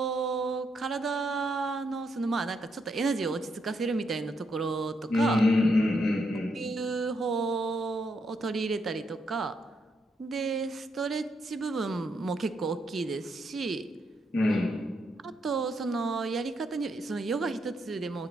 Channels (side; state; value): both; normal; correlation 0.78